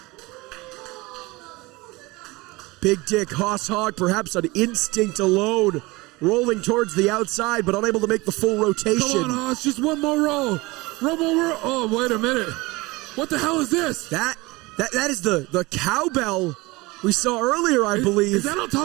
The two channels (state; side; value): quieter; left; 22.7 dB